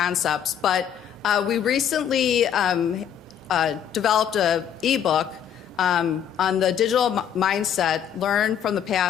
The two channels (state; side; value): quieter; right; 9.0 dB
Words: but we recently developed an ebook on the digital mindset, learn from the